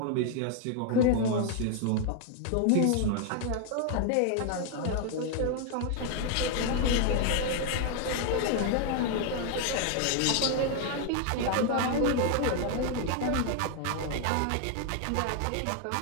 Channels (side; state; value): both; different; correlation 0.00